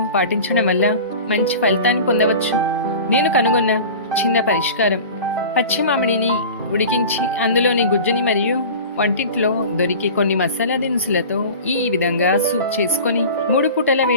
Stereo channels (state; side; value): inverted; both; correlation -0.36